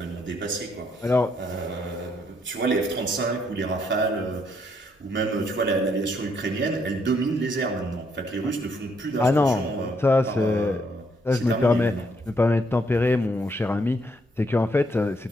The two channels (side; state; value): both; normal; correlation 0.72